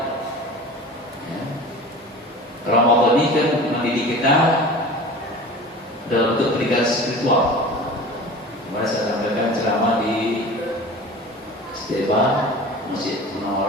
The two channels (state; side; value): normal; both; correlation 0.38